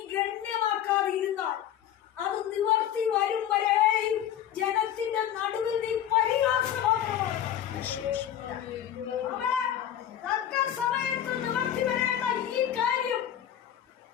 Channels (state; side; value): quieter; right; 10.5 dB